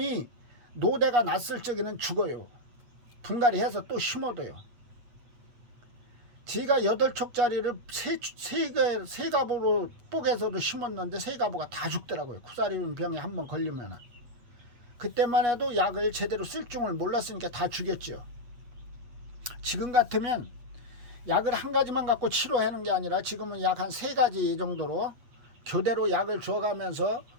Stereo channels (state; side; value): late; left; 8.4 ms